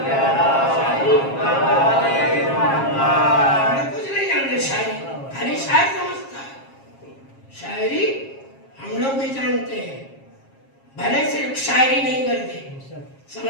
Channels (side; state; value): right; late; 7.4 ms